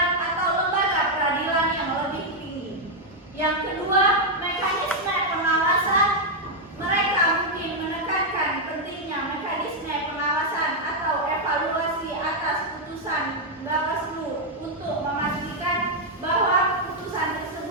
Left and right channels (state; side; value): normal; both; correlation 0.00